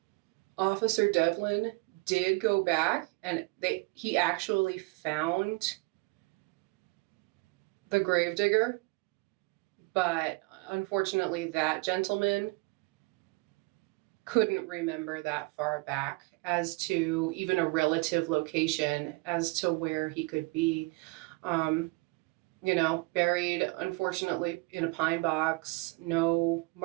Officer Devlin did go back and he actually found the gravedigger, but unfortunately that gentleman couldn't remember that far back as to even a relative location as to where he could be. Buried, unfortunately, in a pine box, no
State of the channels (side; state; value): left; quieter; 26.1 dB